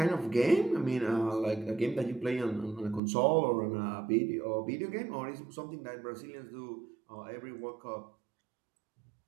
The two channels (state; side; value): drops out; left; at 3.0 s